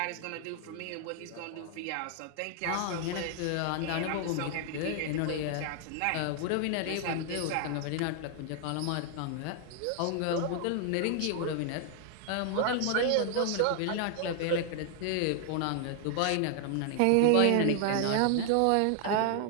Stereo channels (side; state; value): both; different; correlation 0.00